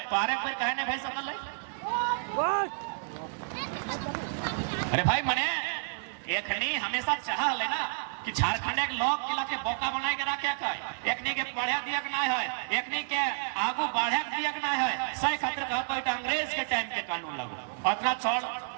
तो आरे पर कहने भय सकल है। अरे भाई मने एकनी हमेशा चाह ले ना कि झारखंड एक लोग किला के बोका बनाए के रखे का, एकनी के पढ़े दिया के ना है, एकनी के आगू बढ़े दिया के ना है। सही खातिर कहता है अंग्रेज के टाइम के कानून लागू। अतना छोड़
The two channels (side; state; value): left; silent; digital silence